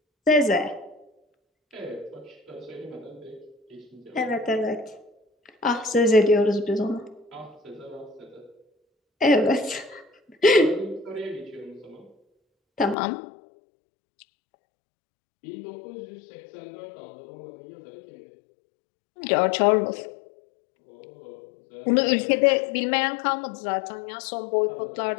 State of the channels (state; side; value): drops out; right; at 13.0 s